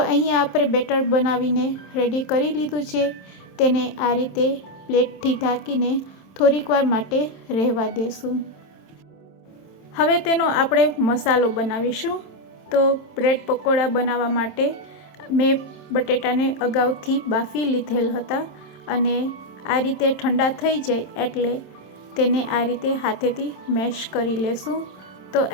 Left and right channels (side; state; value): right; late; 27 ms